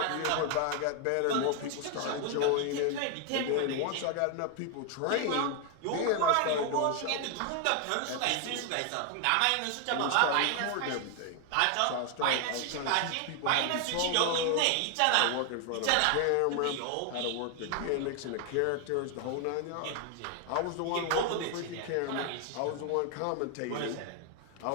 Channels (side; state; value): both; different; correlation 0.00